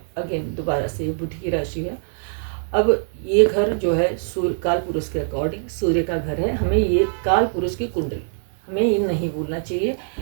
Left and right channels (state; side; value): silent; left; digital silence